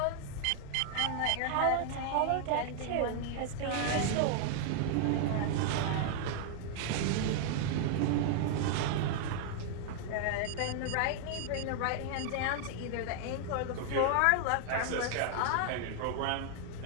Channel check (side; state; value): both; different; correlation 0.00